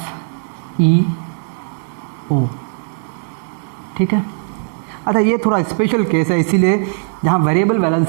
ठीक है। अच्छा, ये थोड़ा स्पेशल केस है इसीलिए जहाँ वेरिएबल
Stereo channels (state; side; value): silent; left; 67 dB below the other